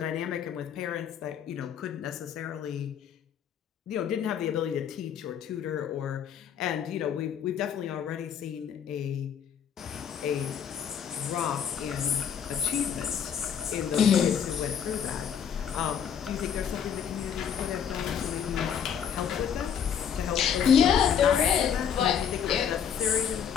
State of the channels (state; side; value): quieter; right; 8.0 dB